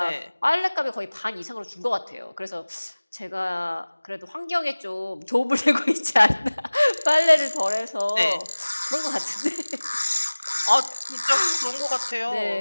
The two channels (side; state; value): both; inverted; correlation -1.00